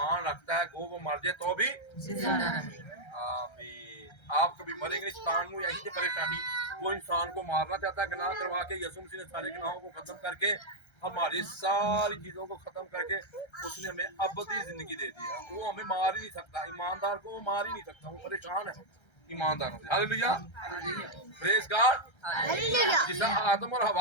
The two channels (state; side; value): late; right; 1.3 ms